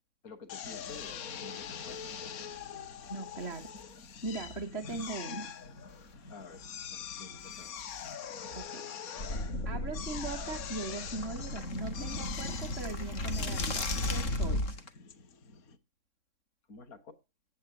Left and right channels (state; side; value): late; right; 3.6 ms